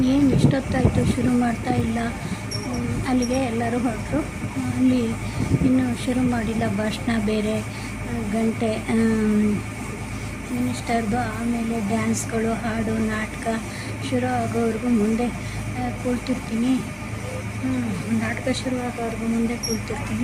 ಏನು ಇಷ್ಟೊತ್ತಾಯಿತು, ಶುರು ಮಾಡ್ತಾ ಇಲ್ಲ? ಅಲ್ಲಿಗೆ ಎಲ್ಲರೂ ಹೊರಟರು. ಅಲ್ಲಿ ಇನ್ನೂ ಶುರು ಮಾಡಿಲ್ಲ. ಭಾಷಣ ಬೇರೆ, ಗಂಟೆ ಮಿನಿಸ್ಟರ್ದು, ಆಮೇಲೆ ಡ್ಯಾನ್ಸ್ಗಳು, ಹಾಡು, ನಾಟಕ ಶುರು ಆಗೋವರೆಗೂ ಮುಂದೆ ಕೂಳ್ತಿರ್ತೀನಿ. ನಾಟಕ ಶುರು ಆಗೋವರೆಗೂ ಮುಂದೆ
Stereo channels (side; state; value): both; identical; correlation 1.00